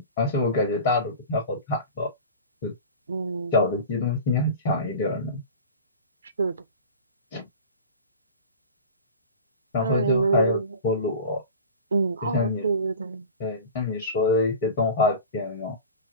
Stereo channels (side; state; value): both; inverted; correlation -0.35